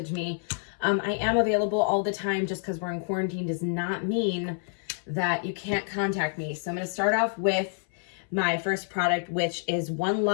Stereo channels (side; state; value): right; silent; 59 dB below the other